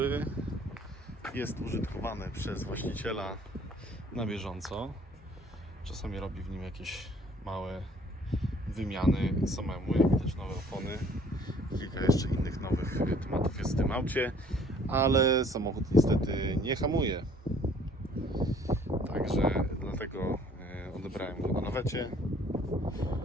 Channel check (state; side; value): normal; both; correlation 0.57